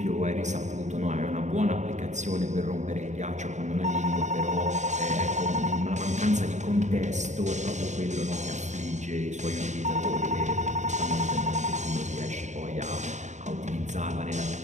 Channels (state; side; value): late; left; 0.34 ms